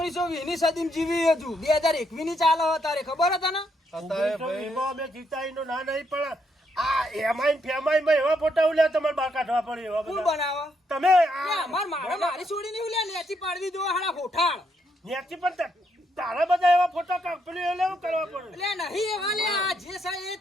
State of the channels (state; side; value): normal; both; correlation 0.76